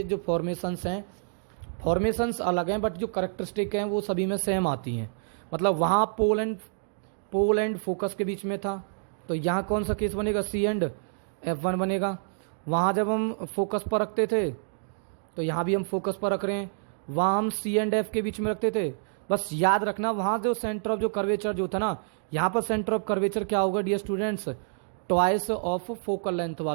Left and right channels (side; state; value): left; silent; digital silence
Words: जो फॉर्मेशंस हैं, फॉर्मेशंस अलग हैं बट जो करेक्टरिस्टिक हैं वो सभी में सेम आती हैं। मतलब वहाँ पोल एंड फोकस के बीच में था, तो यहाँ कौन सा केस बनेगा? C&F1 बनेगा। वहाँ जब हम फोकस पर रखते थे तो यहाँ भी हम फोकस पर रख रहे हैं, वहाँ हम C&F के बीच में रखते थे। बस याद रखना वहाँ जो सेंटर ऑफ जो कर्वेचर जो था ना, यहाँ पर सेंटर ऑफ कर्वेचर क्या होगा dear students? Twice of focal length